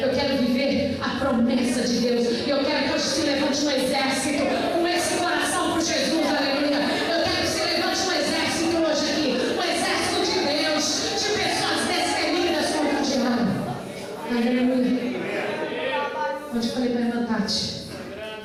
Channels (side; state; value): both; identical; correlation 1.00